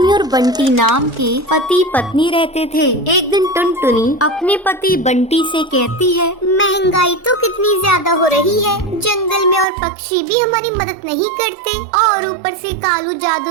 और बंटी नाम के पति पत्नी रहते थे। एक दिन टुनटुनी अपने पति बंटी से कहती है, महंगाई तो कितनी ज्यादा हो रही है, जंगल में और पक्षी भी हमारी मदद नहीं करते और ऊपर से कालू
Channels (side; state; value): left; drops out; at 9.7 s